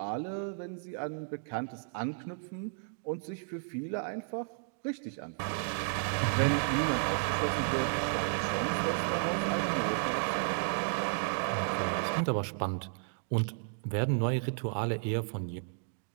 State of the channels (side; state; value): left; silent; digital silence